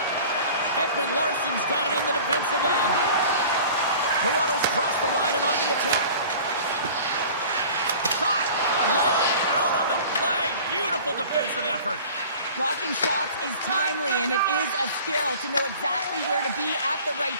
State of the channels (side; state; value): both; inverted; correlation -0.43